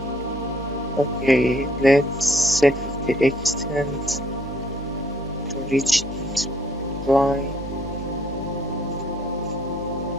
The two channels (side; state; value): both; normal; correlation 0.65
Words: Okay, let's set the extent to reach this line.